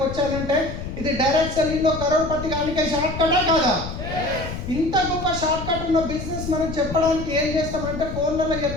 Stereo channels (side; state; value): left; noise; rumble, 8 dB below the sound